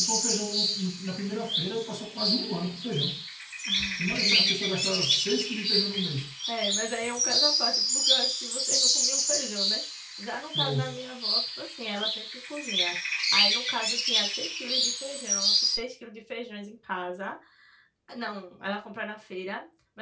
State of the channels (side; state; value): both; identical; correlation 1.00